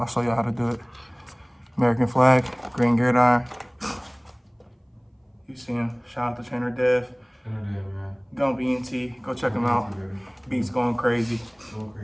show y'all how to do it. American flag, green gridiron. You see him. Shout out to Trainer Dev. man. Gump ENT. Go check him out. Beats going crazy. Going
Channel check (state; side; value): identical; both; correlation 1.00